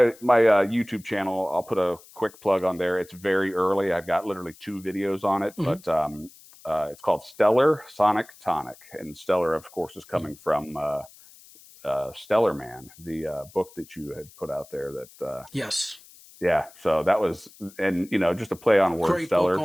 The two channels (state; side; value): noise; left; hiss, 23 dB below the sound